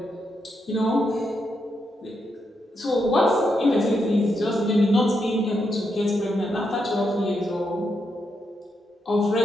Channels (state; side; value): normal; both; correlation 0.82